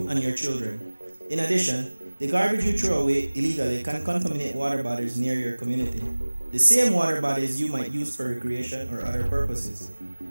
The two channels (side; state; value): both; inverted; correlation -1.00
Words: and your children. In addition, the garbage you throw away illegally can contaminate water bodies near your community, the same water bodies you might use for recreation or other purposes.